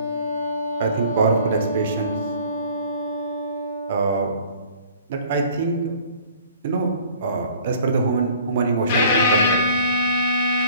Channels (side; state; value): both; inverted; correlation -0.51